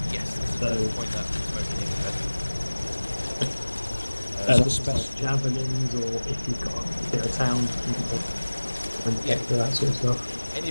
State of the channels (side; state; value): both; inverted; correlation -1.00